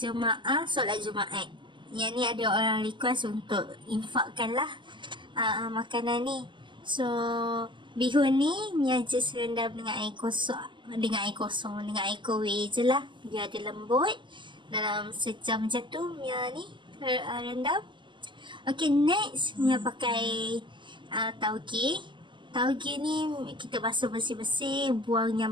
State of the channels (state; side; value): late; left; 0.23 ms